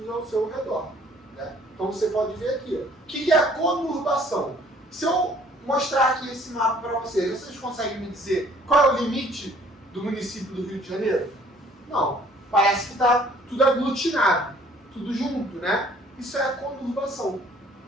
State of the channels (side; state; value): both; normal; correlation 0.57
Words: ao seu redor. Né? Então, você pode ver aqui. Ó. O que é a conurbação? Se eu mostrar aqui esse mapa para vocês conseguem me dizer qual é o limite do município do Rio de Janeiro? Não. Parece que está tudo aglutinado, tudo junto, né? Isso é a conurbação.